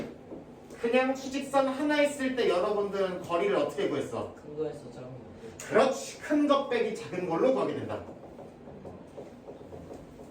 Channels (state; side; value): identical; both; correlation 1.00